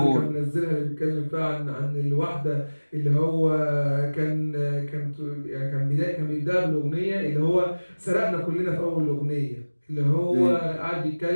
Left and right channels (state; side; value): inverted; both; correlation -1.00